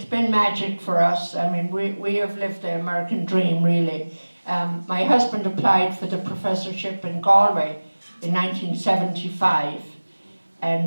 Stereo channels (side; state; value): both; inverted; correlation -1.00